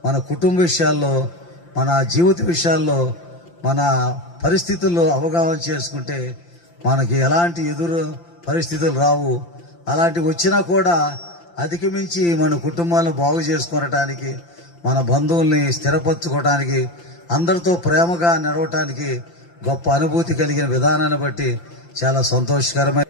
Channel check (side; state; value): right; late; 5.8 ms